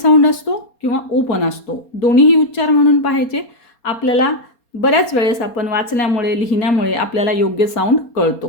असतो किंवा ओ पण असतो. दोन्हीही उच्चार म्हणून पाहायचे. आपल्याला बऱ्याच वेळेस आपण वाचण्यामुळे लिहिण्यामुळे आपल्याला योग्य साऊंड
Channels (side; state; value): right; late; 4.3 ms